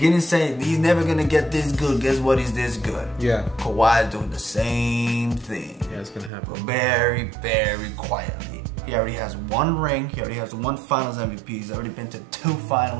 saying he's never gonna get this good. Guess what? He's this good. Yeah. Kawhi is doing the same thing. Yeah, it's gonna happen. But very, very quietly. He already has 1 ring. He already has 1 Finals MVP. He's already been to 2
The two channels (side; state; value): left; drops out; at 6.3 s